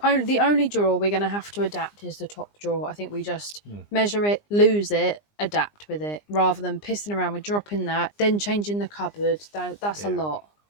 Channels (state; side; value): late; right; 20 ms